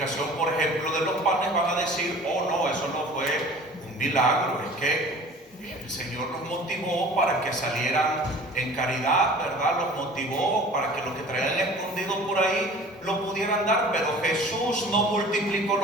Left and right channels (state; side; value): normal; both; correlation 0.45